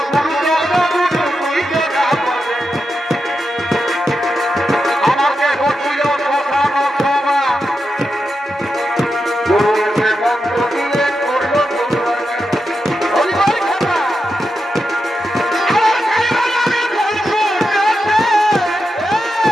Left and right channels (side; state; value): both; normal; correlation 0.88